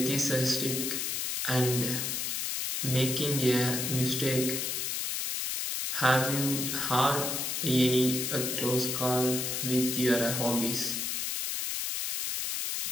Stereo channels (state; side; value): noise; left; hiss, 1 dB below the sound